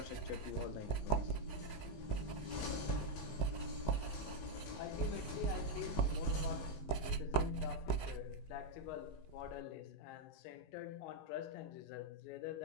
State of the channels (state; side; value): late; right; 19 ms